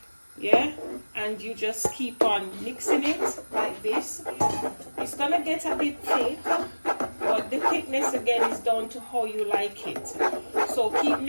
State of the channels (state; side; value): inverted; both; correlation -1.00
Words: Yeah, and you just keep on mixing it like this. It's gonna get a bit thick, but the thickness again is down to how you like it. So keep